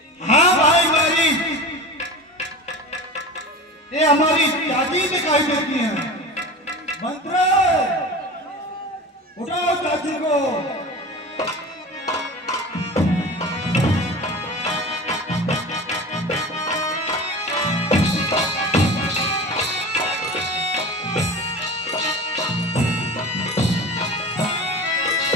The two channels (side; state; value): both; normal; correlation 0.32